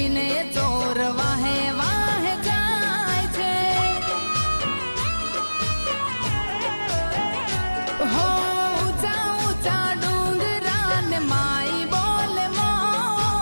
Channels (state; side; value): inverted; both; correlation -1.00